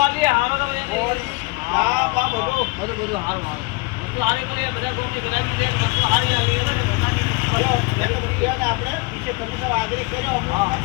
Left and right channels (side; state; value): right; quieter; 26.7 dB